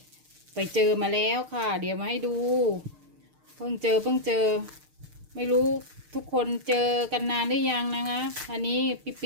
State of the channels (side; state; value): left; late; 6.6 ms